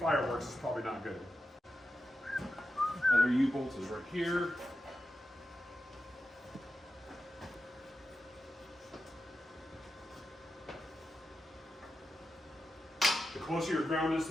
it's probably not good. Other U-bolt is right here. The closer your ground is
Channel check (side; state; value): both; normal; correlation 0.90